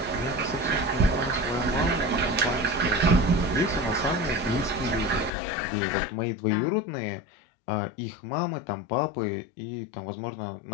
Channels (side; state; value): right; drops out; at 5.3 s